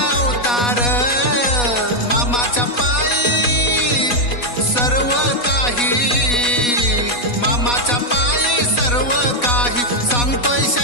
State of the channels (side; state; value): right; late; 4.1 ms